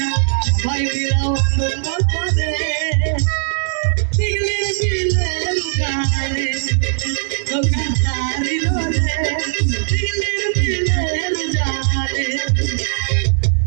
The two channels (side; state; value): left; silent; 67 dB below the other